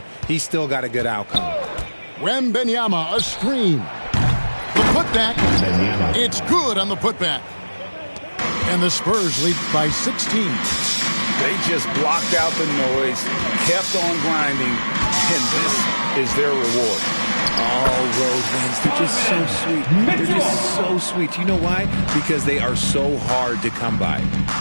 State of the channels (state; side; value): inverted; both; correlation -1.00